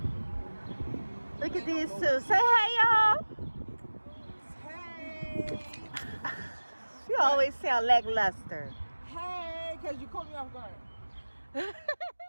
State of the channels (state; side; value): inverted; both; correlation -1.00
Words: Look at these two. Say hey, y'all. Hey! You always sound lackluster. Hey! Because you caught me off guard.